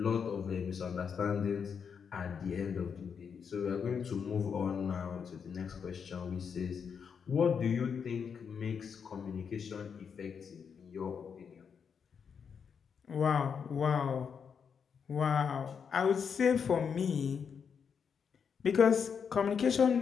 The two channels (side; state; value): right; quieter; 6.7 dB